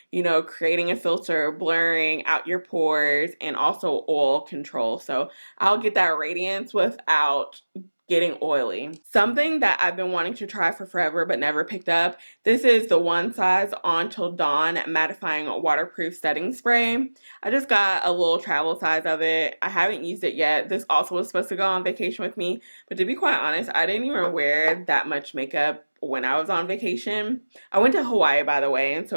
you know, creating a filter, blurring out your pores, and also oil control. So I'll get that radiance without getting oily. Something that I've been wanting to try for forever but never picked up. This is the One Size On Till Dawn Mattifying Waterproof Setting Spray. I just got a little travel size of it. I haven't used it yet. This also was supposed to go on vacation with me, but to be quite honest, I didn't even wear that much makeup when I was on vacation. I went to Hawaii, by the way, and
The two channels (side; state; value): both; inverted; correlation -1.00